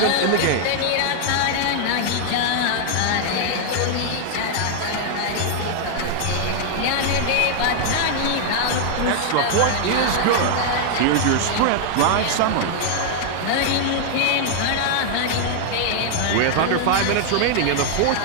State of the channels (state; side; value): different; both; correlation 0.00